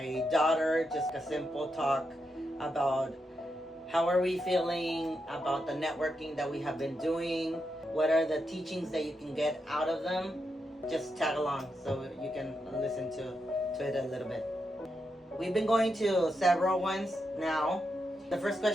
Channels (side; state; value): both; normal; correlation 0.85